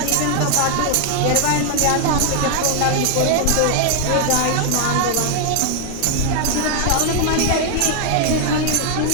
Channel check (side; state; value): both; different; correlation 0.00